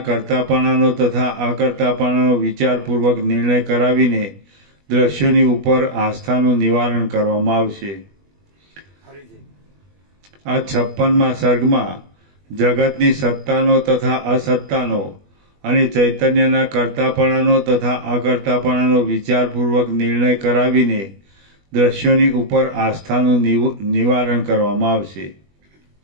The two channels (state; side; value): late; left; 21 ms